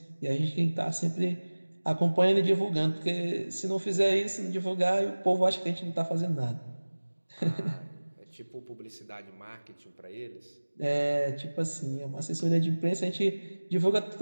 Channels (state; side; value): inverted; both; correlation -1.00